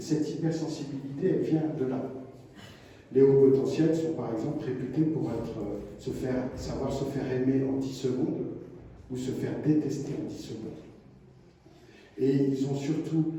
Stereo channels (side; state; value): both; identical; correlation 1.00